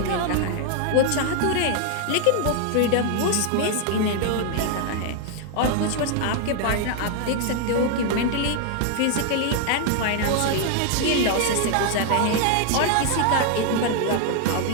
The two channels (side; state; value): both; different; correlation 0.00